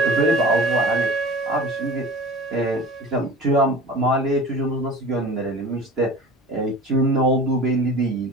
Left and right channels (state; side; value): normal; both; correlation 0.38